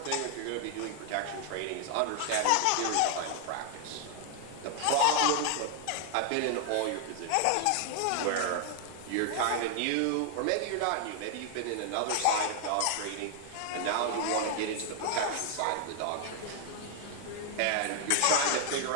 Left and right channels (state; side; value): different; both; correlation 0.00